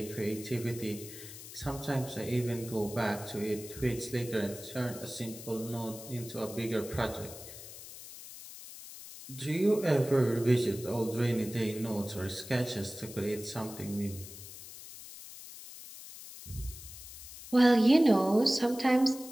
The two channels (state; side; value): noise; left; hiss, 14 dB below the sound